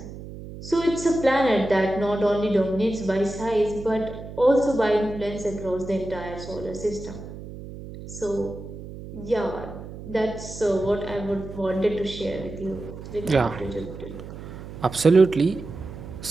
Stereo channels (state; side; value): noise; right; hum, 12 dB below the sound